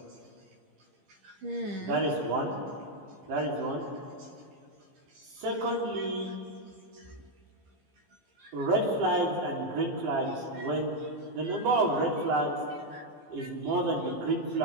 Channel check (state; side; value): late; left; 15 ms